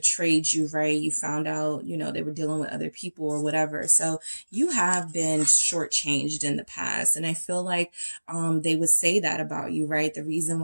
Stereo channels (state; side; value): inverted; both; correlation -1.00